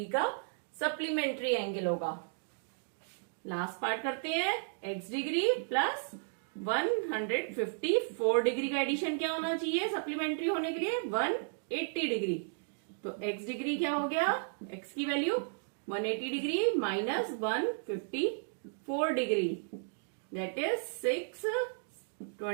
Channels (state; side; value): silent; left; digital silence